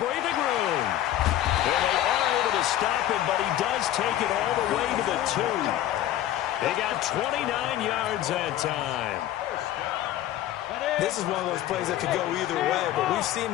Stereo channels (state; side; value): quieter; right; 12.8 dB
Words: breathing room. And they are able to stop him, but he does take it all the way to the 2. They got 29 yards that time. This is one of those plays that could go either way, but we've seen